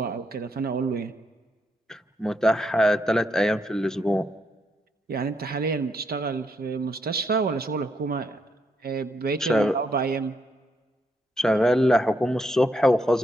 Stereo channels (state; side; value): normal; both; correlation 0.77